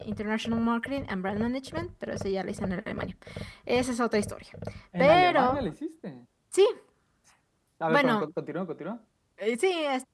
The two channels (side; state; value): both; identical; correlation 1.00